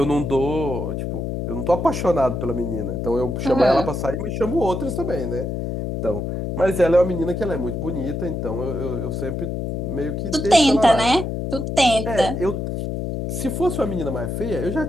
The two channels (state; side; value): noise; left; hum, 3 dB below the sound